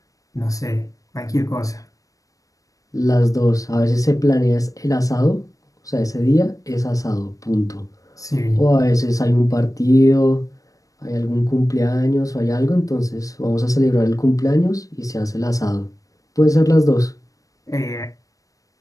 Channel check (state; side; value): late; right; 0.16 ms